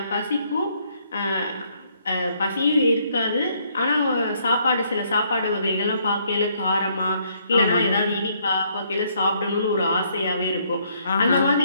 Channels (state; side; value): inverted; both; correlation -0.69